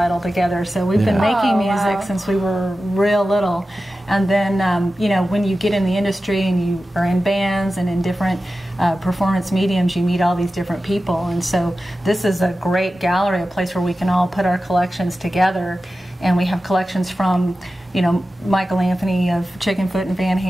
together. So we've been making music since we were real little. And then, you know, when you get in the industry and you are in bands and in different performance mediums, you meet all these different people. And so this is a great gallery, a place where we can all put our collections together. And we have collections from, you know, Michael Anthony of Chickenfoot and Van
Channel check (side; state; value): both; normal; correlation 0.94